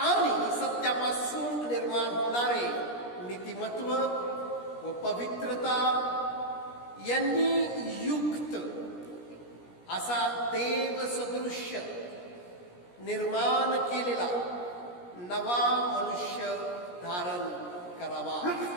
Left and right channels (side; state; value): right; late; 17 ms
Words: सत्यापासून निर्माण होणारे नीतिमत्व व पवित्रता यांनी युक्त असा देवसदृश्य निर्माण केलेला नवा मनुष्य धारण करावा.